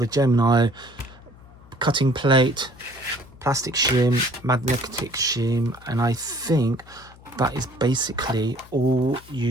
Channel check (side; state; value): left; noise; hum, 22 dB below the sound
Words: Gemini, cutting plate, plastic shim, magnetic shim, and I think that is basically all